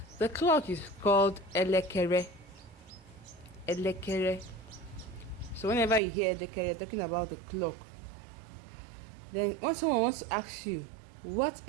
The clock is called elekere. Elekere. So whenever you hear elekere, you're talking about the clock. Then when someone wants to ask you, what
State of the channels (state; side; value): drops out; left; at 6.0 s